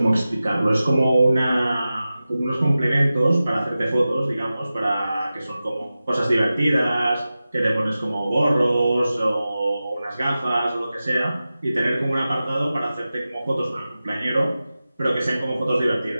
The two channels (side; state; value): both; inverted; correlation -0.95